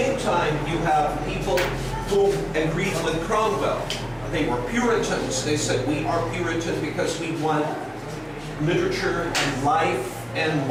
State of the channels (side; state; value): both; identical; correlation 1.00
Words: time, you have people who agreed with Cromwell. They were Puritans. They said, "We are Puritan because we want literature and life and